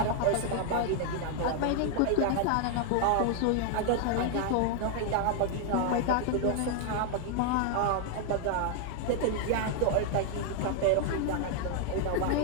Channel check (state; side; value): different; both; correlation 0.00